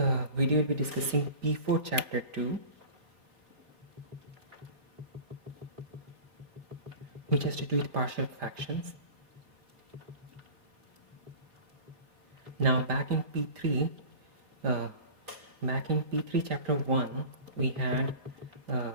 video, we'll be discussing P4 Chapter 2, which has to do with partial fractions. Now, back in P3 Chapter 1, we had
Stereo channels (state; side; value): late; left; 4.5 ms